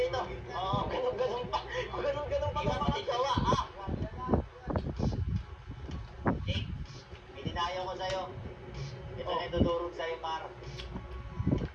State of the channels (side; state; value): both; identical; correlation 1.00